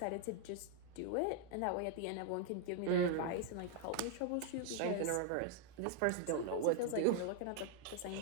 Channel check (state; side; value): different; both; correlation 0.00